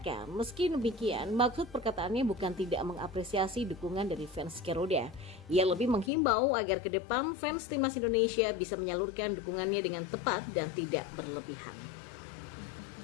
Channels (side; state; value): right; drops out; at 6.1 s